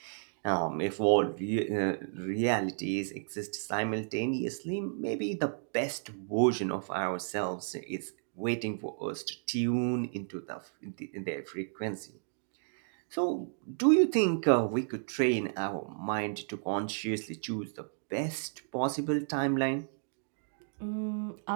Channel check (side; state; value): left; silent; digital silence